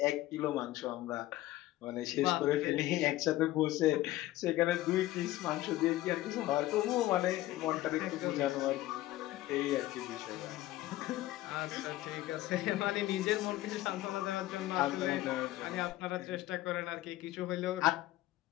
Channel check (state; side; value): quieter; right; 16.1 dB